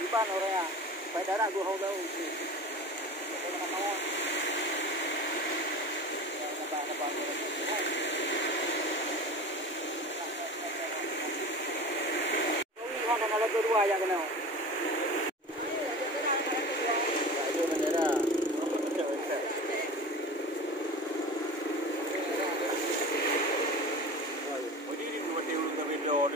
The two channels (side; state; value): both; normal; correlation 0.34